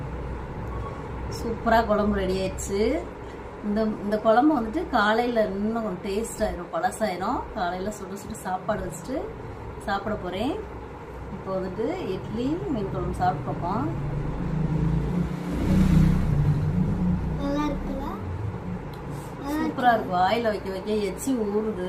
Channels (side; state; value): both; identical; correlation 1.00